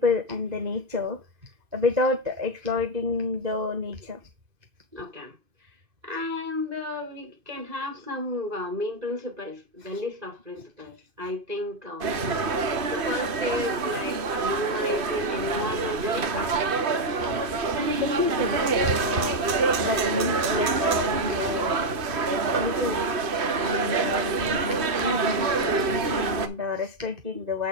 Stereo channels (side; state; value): left; late; 2.5 ms